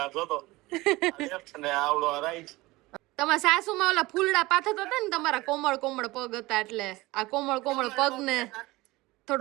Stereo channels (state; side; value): quieter; left; 20.5 dB